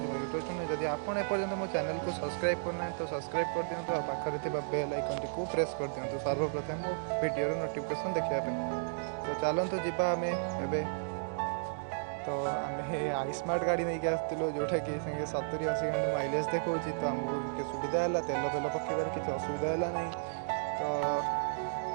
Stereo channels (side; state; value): left; silent; digital silence